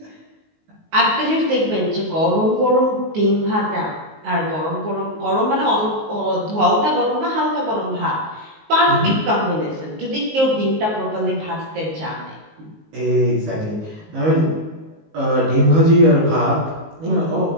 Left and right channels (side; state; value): left; late; 19 ms